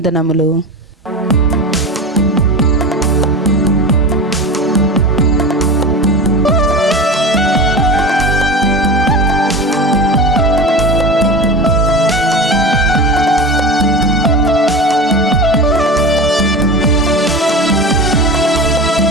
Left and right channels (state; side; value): normal; both; correlation 0.28